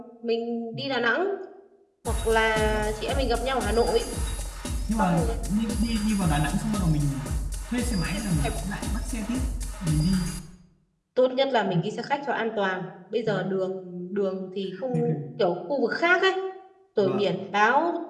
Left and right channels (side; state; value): both; identical; correlation 1.00